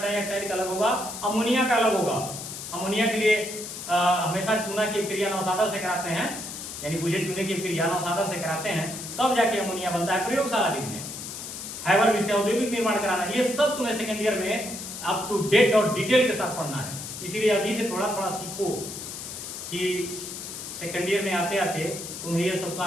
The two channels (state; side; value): noise; left; hiss, 9 dB below the sound